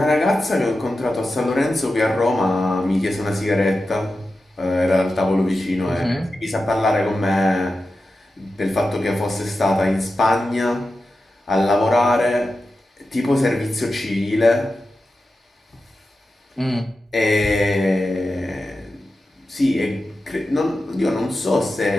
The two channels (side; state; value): both; normal; correlation 0.92